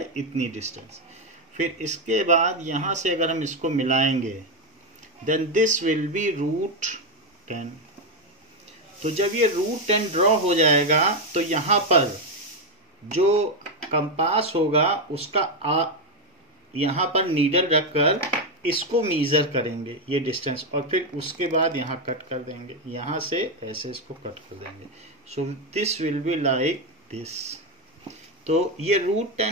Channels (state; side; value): normal; both; correlation 0.06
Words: इतनी डिस्टेंस। फिर इसके बाद यहाँ से अगर हम इसको मिलाएंगे then this will be root 10। तो जब ये रूट 10 ड्रॉ हो जाएगा तो यहाँ पर जो कंपास होगा उसका यहाँ पर नीडल रखकर इसको मीजर करेंगे ये डिस्टेंस, और फिर उसके बाद यहाँ कट कर देंगे, यहाँ से ऐसे इसको कट कर देंगे। सो this will be like this. तो ये रूट